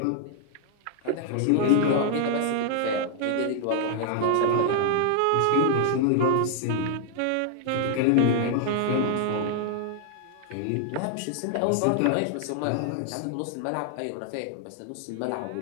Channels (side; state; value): both; different; correlation 0.00